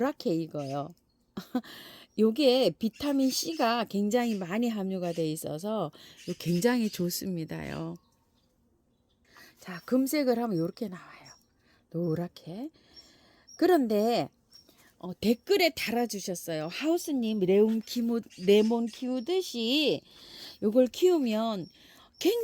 익어요. 요게 비타민 C가 굉장히 많이 함유가 돼 있어서 굉장히 좋습니다요. 자, 금색을 하면 이렇게 나와요. 노랗게. 그런데 댓글에 달아주셨어요. 하우스님 레몬 키우듯이 요걸 키우면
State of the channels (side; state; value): both; identical; correlation 1.00